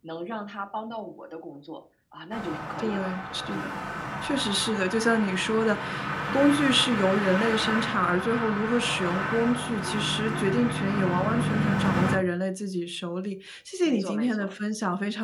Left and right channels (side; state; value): both; identical; correlation 1.00